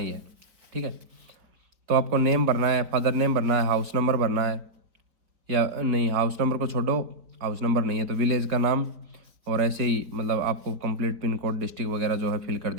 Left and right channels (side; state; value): left; late; 4.7 ms